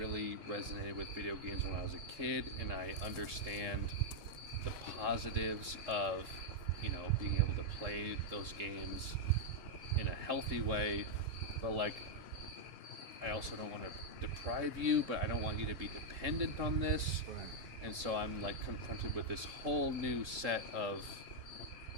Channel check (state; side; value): late; left; 3.6 ms